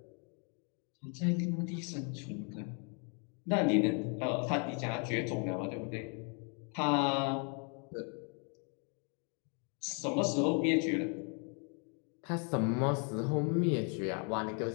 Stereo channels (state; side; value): quieter; right; 37.8 dB